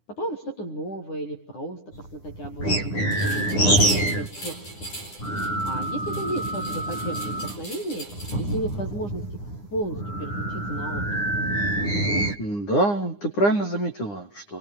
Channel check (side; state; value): right; late; 9.8 ms